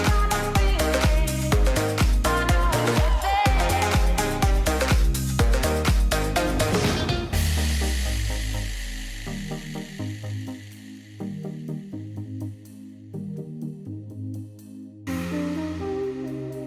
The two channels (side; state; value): both; identical; correlation 1.00